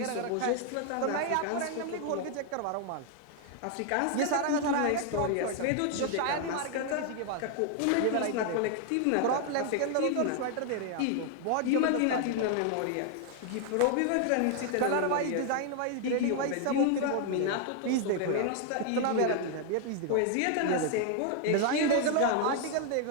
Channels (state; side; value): different; both; correlation 0.00